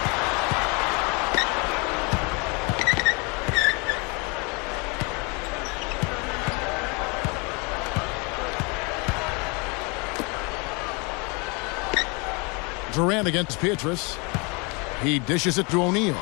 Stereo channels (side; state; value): right; quieter; 30.6 dB